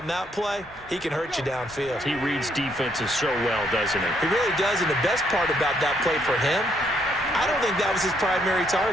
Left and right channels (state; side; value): normal; both; correlation 0.71